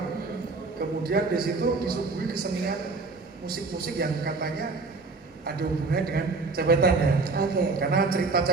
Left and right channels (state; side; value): quieter; left; 3.9 dB